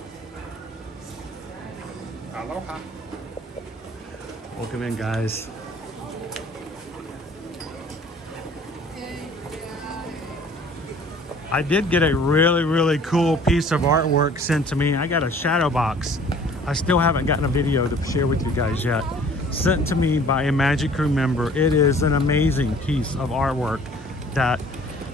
Aloha. Welcome in, guys. I did get a really, really cool piece of artwork sent to me. I got a shadow box. I still haven't gotten a video to share with you guys yet. Sent to me by a Magic Crew member. It is an amazing piece of artwork that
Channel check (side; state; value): both; normal; correlation 0.52